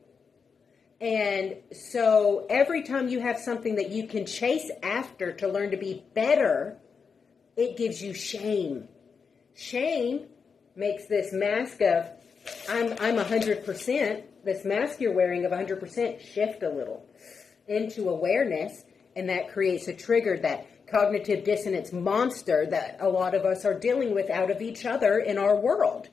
And so every time you have something that you can chase after to learn to be better, it gives you shame. Shame makes this mask of, I'm 100%, this mask you're wearing of 100% shift a little into awareness, and that creates a trigger, that cognitive dissonance monster that a lot of us are dealing with out of each other in our world.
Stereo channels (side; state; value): right; quieter; 5.7 dB